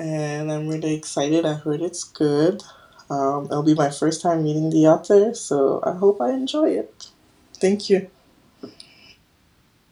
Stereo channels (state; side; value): identical; both; correlation 1.00